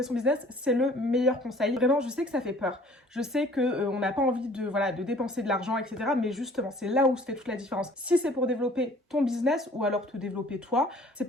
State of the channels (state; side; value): normal; both; correlation 0.53